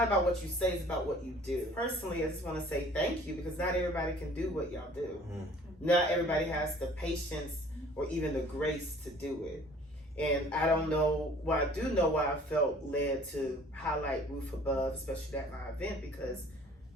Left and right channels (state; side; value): normal; both; correlation 0.52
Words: about what you say, it's about what you do. Personally, I just want to say thank you because not everybody can do what y'all do. Not everybody has the patience or even the grace to do it. And I don't know, I do know why I felt led to highlight Roof Above, especially at my event, because